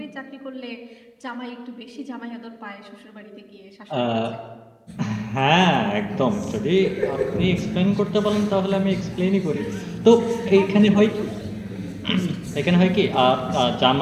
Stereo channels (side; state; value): both; identical; correlation 1.00